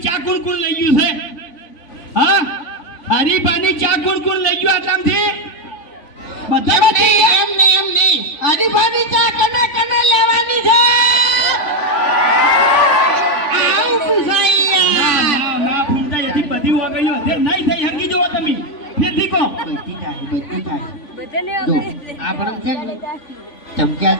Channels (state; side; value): late; right; 3.5 ms